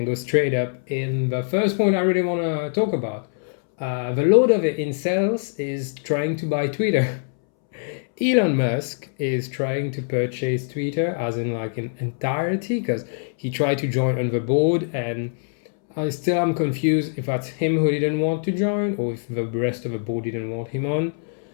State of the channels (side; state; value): right; silent; 63 dB below the other